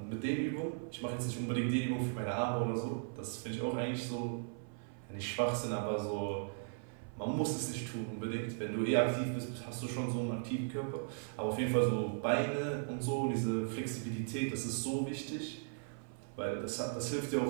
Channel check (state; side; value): silent; left; 53 dB below the other